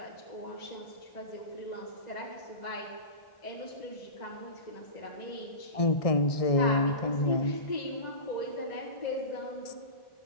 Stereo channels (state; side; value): late; right; 1.6 ms